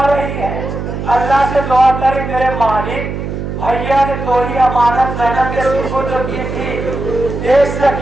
رہی ہے. اللہ سے دعا کری میرے مالک, بھیا نے تھوڑی امانت زینب کے سپرد کی تھی. ایک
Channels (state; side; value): noise; right; hum, 5 dB below the sound